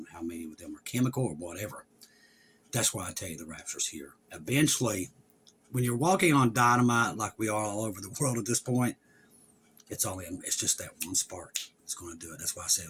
how many of them are chemical or whatever. That's why I tell you the rapture's here. Eventually, when you're walking on dynamite like we are all over the world at this point, it's just that one spark that's going to do it. That's why I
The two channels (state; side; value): identical; both; correlation 1.00